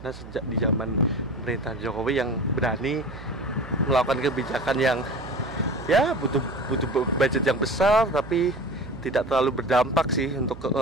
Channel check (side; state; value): right; noise; hum, 15 dB below the sound